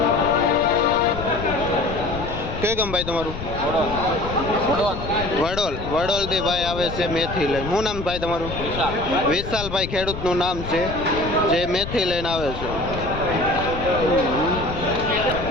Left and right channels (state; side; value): noise; left; rumble, 8 dB below the sound